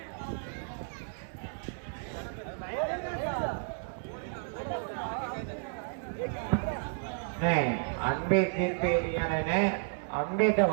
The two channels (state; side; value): silent; left; 56 dB below the other